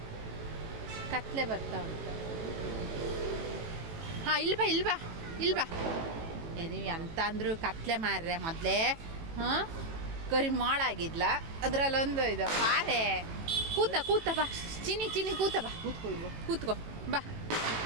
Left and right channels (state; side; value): late; left; 18 ms